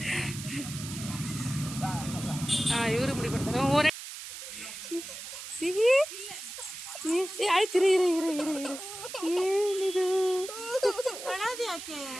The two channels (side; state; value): right; noise; hiss, 10 dB below the sound